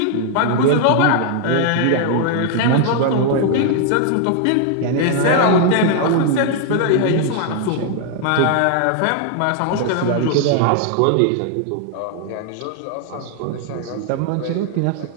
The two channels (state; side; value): different; both; correlation 0.00